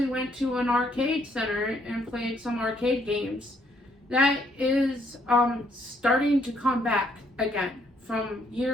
went to an arcade center and played some arcade games. That is starting to come back again from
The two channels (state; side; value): normal; both; correlation 0.69